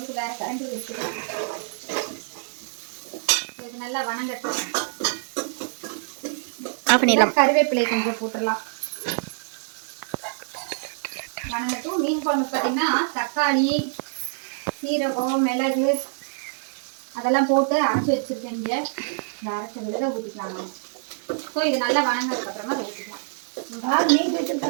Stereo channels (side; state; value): left; silent; digital silence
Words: வேறு கரண்டு வச்சுருக்கேன். இது நல்லா வணங்கட்டும். கருவேப்பிலை கொஞ்சம் போட்டுடலாம். வணங்கட்டும். மீன் குழம்பு பார்த்தீங்கன்னா தக்காளி, சீரகம், மிளகு அதெல்லாம் போட்டு அரைச்சி வச்சுருக்கேன். இங்கே இந்த அரைச்ச விழுத ஊற்றிக்கலாம். ஸோ இது நல்லா வணங்கினதுக்கப்புறமா அதை ஊற்றிக்கலாம்.